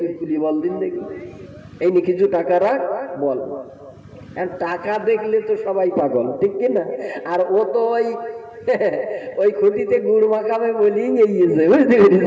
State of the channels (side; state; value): both; identical; correlation 1.00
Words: তুলি বল দিন দেখি, এই নিয়ে কিছু টাকা রাখ বল। টাকা দেখলে তো সবাই পাগল, ঠিক কিনা? আর ও তো ওই খুঁটিতে গুড় মাখাবে বলি গিয়েছে, বুঝতে